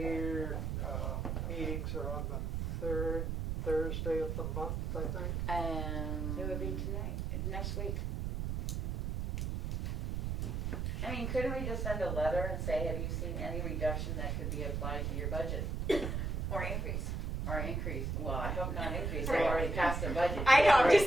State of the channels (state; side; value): noise; right; rumble, 1 dB below the sound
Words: meetings are on the third Thursday of the month, I think. It would be tonight, next week. I mean, couldn't we just send a letter and say, have you seen any reduction that could be applied to your budget? Or increase. Or increase? Well, I hope not increase, they've already passed their budget. I know, I'm